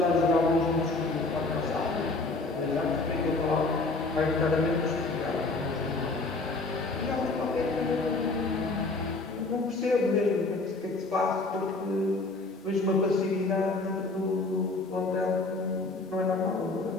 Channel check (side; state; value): right; quieter; 3.4 dB